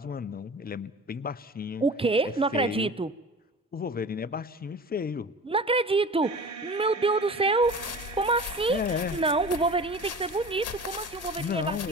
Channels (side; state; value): both; normal; correlation 0.38